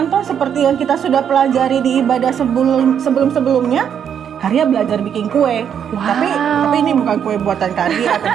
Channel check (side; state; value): left; quieter; 8.4 dB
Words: seperti yang kita sudah pelajari di ibadah sebelum-sebelumnya. Karya belajar bikin kue, Wow. tapi ini bukan kue buatan Karya